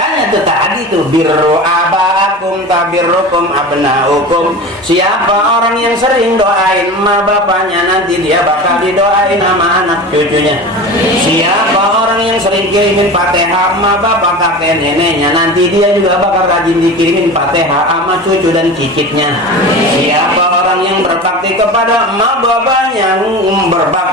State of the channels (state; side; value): normal; both; correlation 0.32